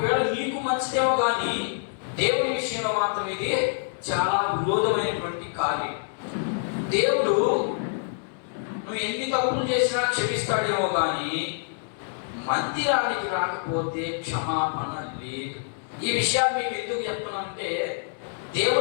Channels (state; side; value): silent; right; digital silence